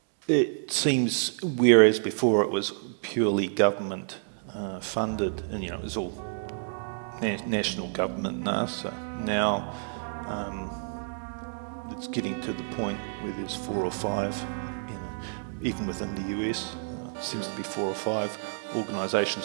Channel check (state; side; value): silent; left; digital silence